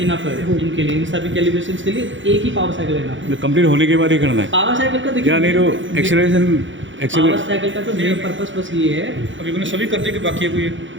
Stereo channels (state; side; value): late; left; 0.55 ms